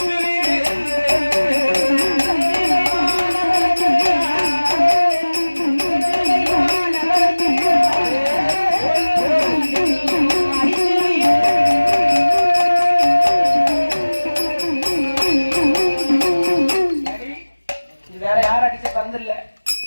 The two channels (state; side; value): inverted; both; correlation -1.00